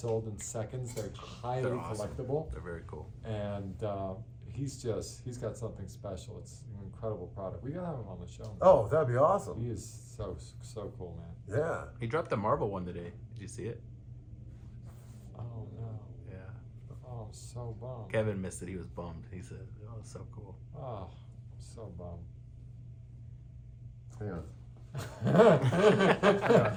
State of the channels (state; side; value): identical; both; correlation 1.00